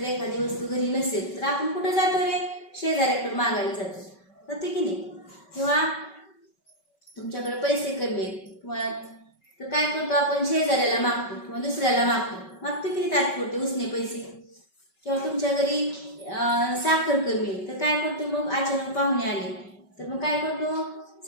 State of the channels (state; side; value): late; right; 5.2 ms